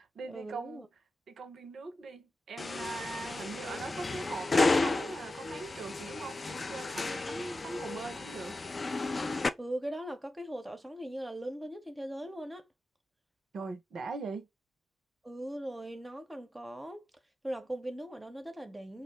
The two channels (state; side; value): normal; both; correlation 0.92